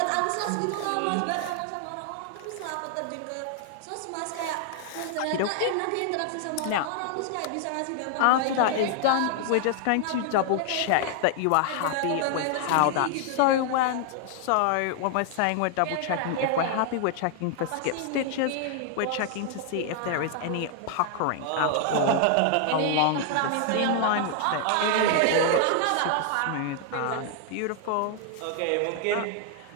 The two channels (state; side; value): different; both; correlation 0.00